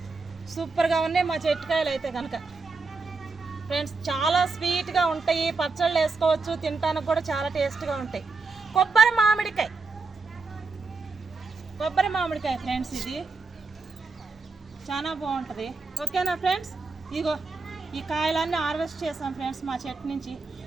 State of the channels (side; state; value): left; quieter; 4.1 dB